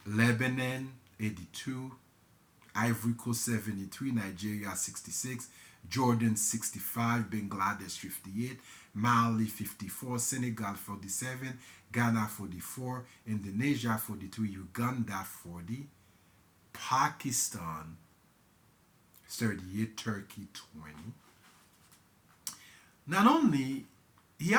Lebanon 82, Ivory Coast 73, Nigeria 66, Jordan 65, Bangladesh 58, Mali 54, Senegal 47, Ghana 44, Indonesia 43, Uganda 40, Pakistan 38, Turkey 20. Not only he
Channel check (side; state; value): both; identical; correlation 1.00